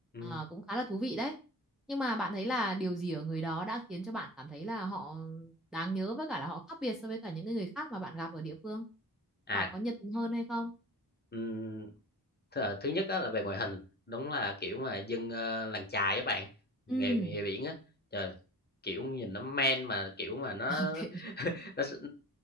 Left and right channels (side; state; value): both; normal; correlation 0.38